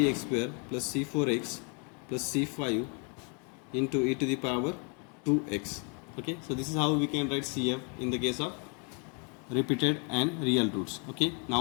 square plus c4x plus c5 into e to the power 2x. Okay, so this is how we can write CF in the case of repeated and real roots. Okay,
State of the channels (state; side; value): quieter; right; 36.4 dB